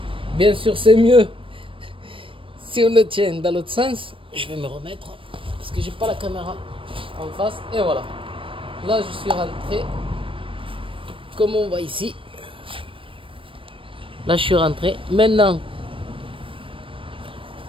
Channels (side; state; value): left; late; 0.25 ms